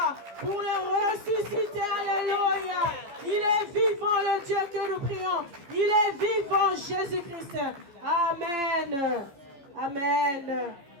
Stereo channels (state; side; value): late; left; 15 ms